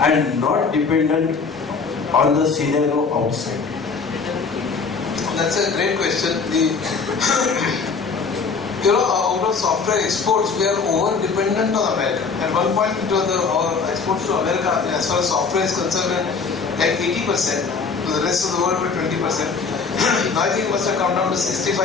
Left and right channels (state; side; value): quieter; right; 5.1 dB